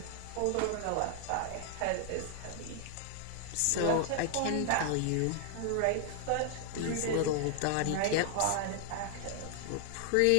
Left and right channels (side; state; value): both; different; correlation 0.00